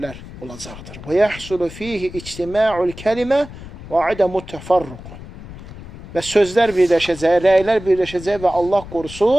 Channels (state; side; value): noise; left; rumble, 15 dB below the sound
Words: olacaqdır. Və yəhsulu fihi ictima'ul kəlimə və adəmut təfarruq. Və sözlər birləşəcək, rəylər birləşəcək və Allah